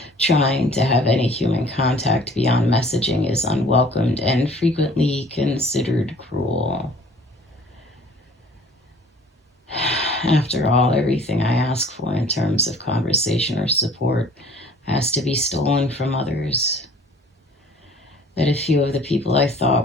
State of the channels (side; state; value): both; normal; correlation 0.50